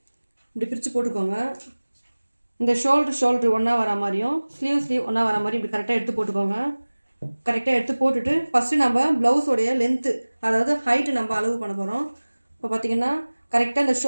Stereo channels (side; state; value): both; inverted; correlation -1.00